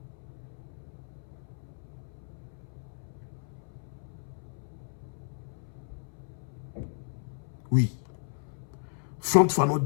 Oui, Frantz Fanon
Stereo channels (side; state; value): right; silent; 55 dB below the other